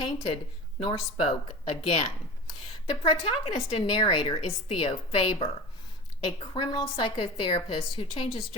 nor spoke again. The protagonist and narrator is Theo Faber, a criminal psychotherapist who changes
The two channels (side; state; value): both; normal; correlation 0.31